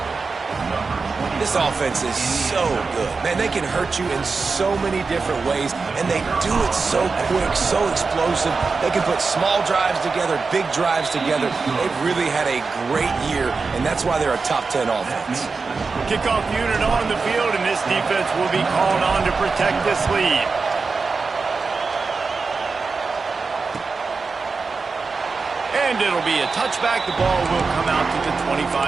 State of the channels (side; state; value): left; quieter; 4.5 dB